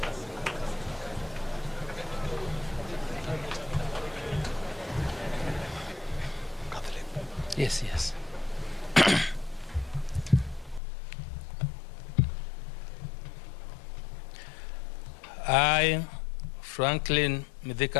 Yes, yes. I, Franklin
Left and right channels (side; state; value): right; drops out; at 10.8 s